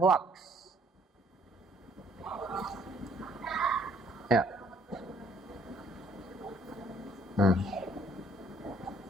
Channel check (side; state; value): both; normal; correlation 0.63